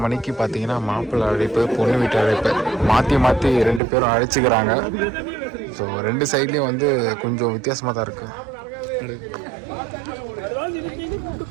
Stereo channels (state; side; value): drops out; left; at 3.8 s